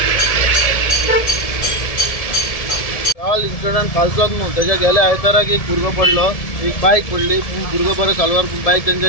काल incident कालचोच न्हू त्याच्या गेल्या आयताराक एक भुरगो पडलो, एक बायक पडली, भुरगो बरो चालवार बायक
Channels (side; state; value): right; late; 1.7 ms